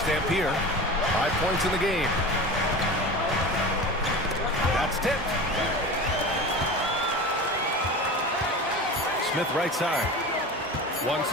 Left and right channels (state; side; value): normal; both; correlation 0.32